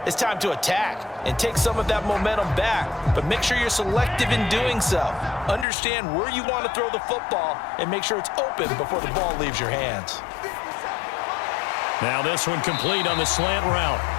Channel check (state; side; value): drops out; right; at 5.7 s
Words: it's time to attack and take some of that momentum back. But make sure you're selective in doing so. Understand where you want to throw the football and make sure it's open before the ball leaves your hands. Now this one complete on the slant route.